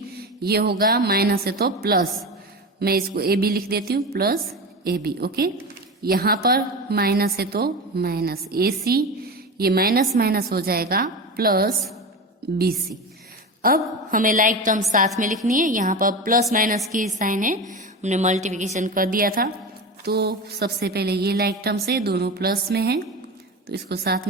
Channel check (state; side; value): normal; both; correlation 0.25